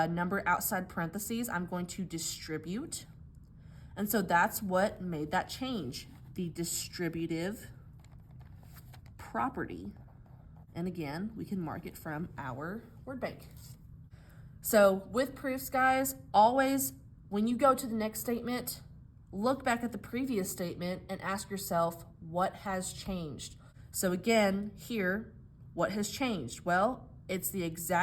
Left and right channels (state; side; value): identical; both; correlation 1.00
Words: outside parentheses, I'm going to distribute. And so that's what made that change, the distributive property. And again, we can mark it from our word bank. So with proofs, guys, always, when you go to the next statement, look back at the previous statement and ask yourself, what has changed? So again, here, what has changed? Well, it's the